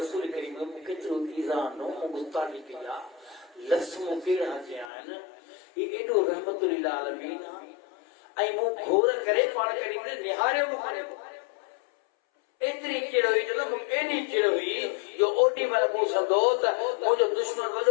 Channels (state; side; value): drops out; right; at 4.9 s